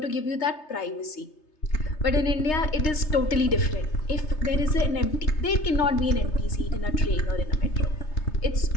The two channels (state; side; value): late; right; 3.3 ms